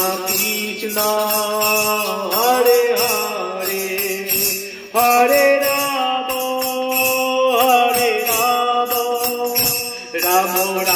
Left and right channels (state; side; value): identical; both; correlation 1.00